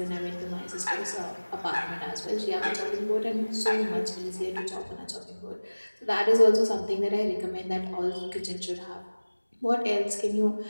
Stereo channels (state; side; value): inverted; both; correlation -1.00